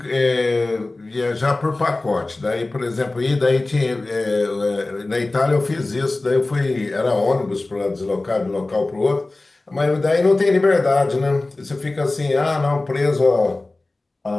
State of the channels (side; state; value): right; quieter; 3.0 dB